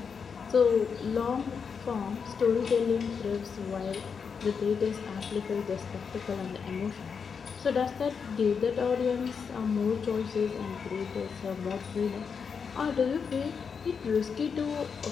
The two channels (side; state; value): right; quieter; 6.1 dB